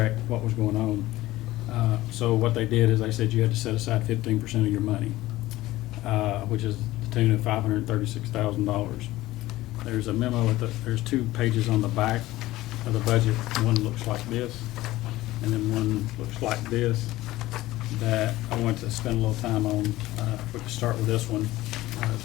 what was going on. So what they did is they said you had to set aside 15% of your money, which is the tune of $536,000. There's a memo there's 2 pages on the back of the budget. One looks like this, and then one looks like this, that I want to spend a little time on. If we could start with this one,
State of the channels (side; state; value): right; quieter; 17.0 dB